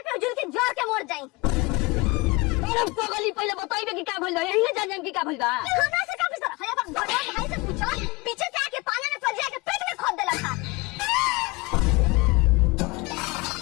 पे जुल के जोर के मर जाई। अरे पगली पहले बताइबे कि का भइल बा, यही ना जान कि का भइल बा। हमरा से का पूछता है अपन भगवान भाई से पूछो, पीछे से आके पानी में फंस जाके पेट में खोद देला था।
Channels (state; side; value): quieter; right; 24.8 dB